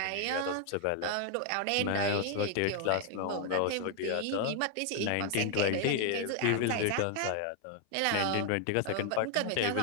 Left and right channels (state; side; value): different; both; correlation 0.00